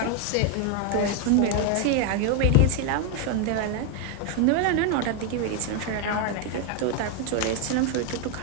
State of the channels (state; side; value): different; both; correlation 0.01